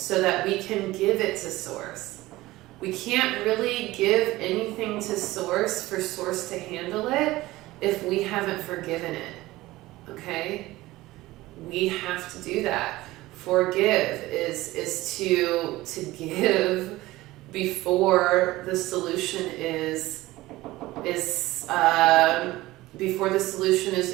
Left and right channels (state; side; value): quieter; left; 18.2 dB